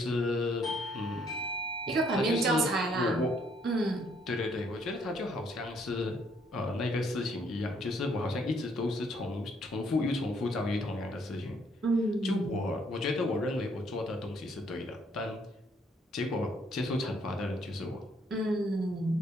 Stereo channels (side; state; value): both; normal; correlation 0.67